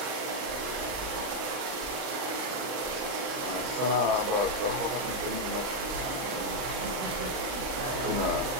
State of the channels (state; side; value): late; left; 39 ms